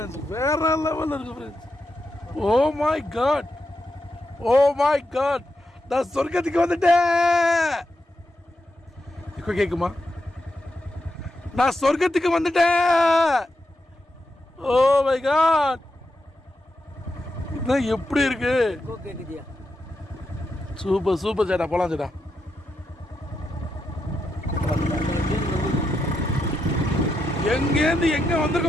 வேற லெவலில் இருக்கு friends. Oh my god, oh my god, நான் சொர்க்கத்துக்கு வந்துட்டேன். இப்போ கேட்குமா? நான் சொர்க்கத்துக்கு வந்துட்டேன். ஓ மை காட், இதான் எப்படி இருக்கு? சூப்பர் சூப்பர் சேட்டா, போலாம் சேட்டா. எங்கேருந்து எங்க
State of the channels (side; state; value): both; normal; correlation 0.85